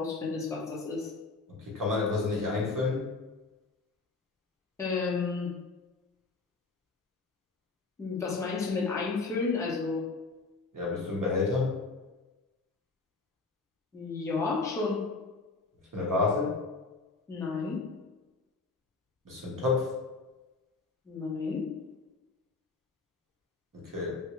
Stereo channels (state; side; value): quieter; right; 3.8 dB